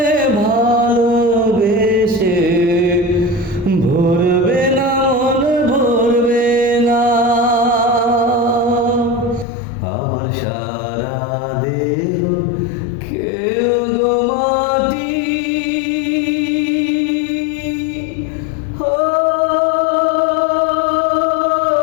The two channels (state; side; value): drops out; right; at 9.5 s